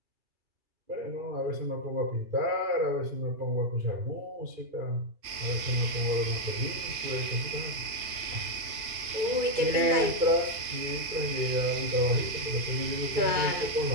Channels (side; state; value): left; late; 2.8 ms